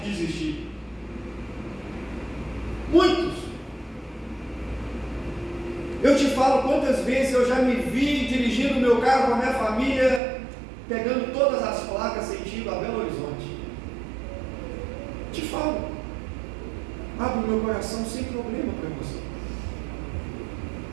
de desistir. Muitos. Eu te falo quantas vezes eu já me vi dirigindo o meu carro com a minha família, pegando todas as placas sentido a Belo Horizonte. Te falo, abro meu coração sem problema para você.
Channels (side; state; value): left; drops out; at 10.2 s